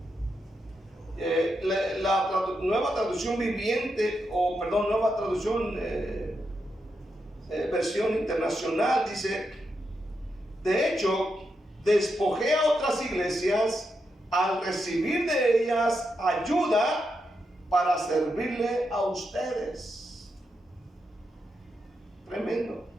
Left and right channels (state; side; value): normal; both; correlation 0.84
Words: La nueva traducción viviente, nueva traducción versión internacional dice, de hecho, despojé a otras iglesias al recibir de ellas ayuda para servirle a ustedes. Tremendo.